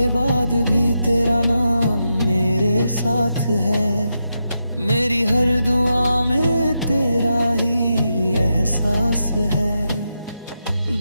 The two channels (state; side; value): inverted; both; correlation -0.86